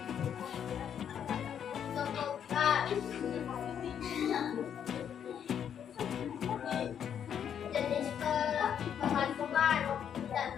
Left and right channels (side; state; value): right; quieter; 8.7 dB